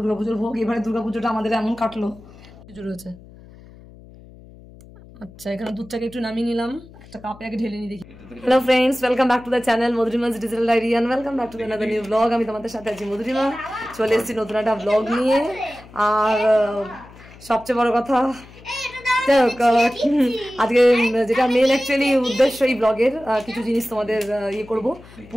ভোগ, এবারে দুর্গাপুজোটা আমাদের এমন কাটলো পুজো রয়েছে। আচ্ছা এখানে দুধটাকে একটু নামিয়ে নিলাম, একটা কাপে আগে ঢেলে নিয়ে দেখি। Hello friends, welcome back to the channel Madhurima's digital diary and welcome back to another new blog. আমি তোমাদের সাথে আছি মধুরিমা, চলে এসেছি নতুন একটা ব্লগ নিয়ে। আর সবচেয়ে বড় কথা আজকে যেটা মেন অ্যাকচুয়ালি উদ্দেশ্য এই ব্লগের, কিছু জিনিস তোমাদের ইয়ে করবো,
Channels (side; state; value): left; noise; hum, 21 dB below the sound